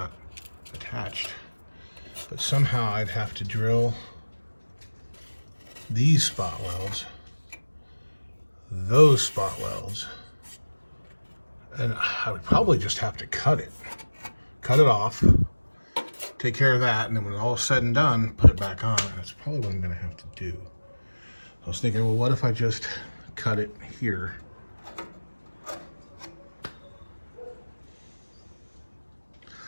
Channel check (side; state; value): both; inverted; correlation -1.00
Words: attached, but somehow I'd have to drill these spot welds, those spot welds, and I would probably just have to cut it off, take care of that, and then when all is said and done, put it back on. And that's probably what I'm gonna have to do. I was thinking, well, what if I just cut it here?